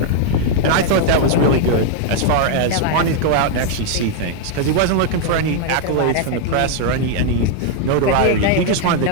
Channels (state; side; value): different; both; correlation 0.00